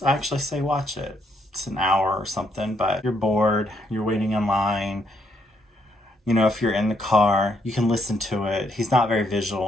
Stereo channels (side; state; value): both; normal; correlation 0.74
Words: I actually say watch it. It's an hour or something, but you're bored, you're waiting in line. You know, if you're in the car, you can listen to it. He's not very